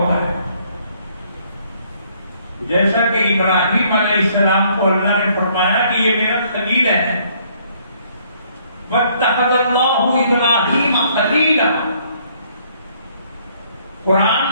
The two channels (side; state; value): both; inverted; correlation -0.65